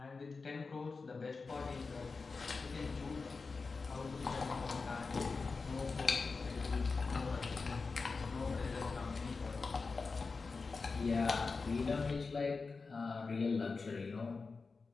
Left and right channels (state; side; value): quieter; right; 4.4 dB